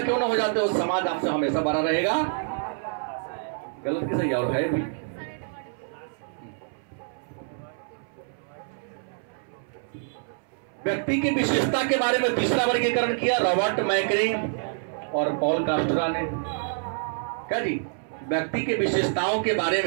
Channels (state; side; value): silent; left; 60 dB below the other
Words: क्यों ना हो जाते हो, समाज आपसे हमेशा बड़ा रहेगा। गलत की सही और है भी। व्यक्ति की विशेषता के बारे में तीसरा वर्गीकरण किया रॉबर्ट मैकरे और पॉल कास्ट्रा ने। क्या जी? व्यक्ति के विशेषताओं के बारे